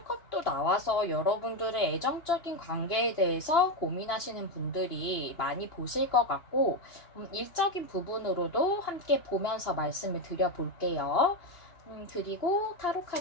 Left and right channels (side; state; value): right; late; 2.9 ms